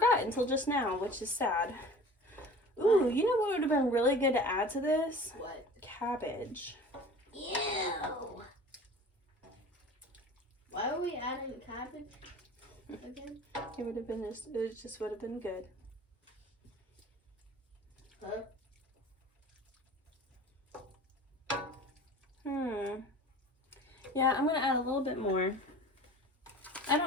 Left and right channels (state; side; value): normal; both; correlation 0.42